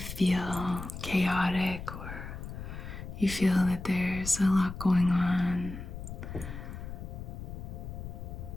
chaotic or you feel that there's a lot going on,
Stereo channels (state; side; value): noise; left; rumble, 9 dB below the sound